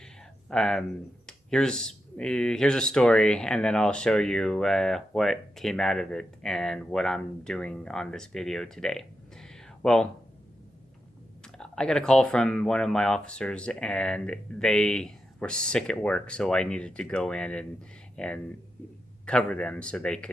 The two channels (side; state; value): both; normal; correlation 0.87